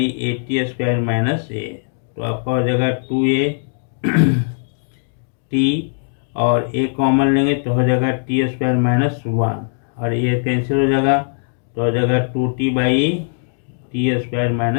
80 square minus A, तो आपका हो जाएगा 2a टी और ए कॉमन लेंगे तो हो जाएगा टी स्क्वायर माइनस 1 और ये कैंसिल हो जाएगा, तो हो जाएगा 2t by T square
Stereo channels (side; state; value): right; silent; digital silence